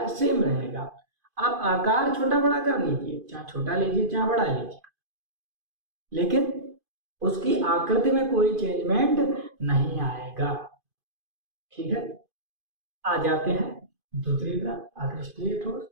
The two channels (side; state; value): left; late; 2.5 ms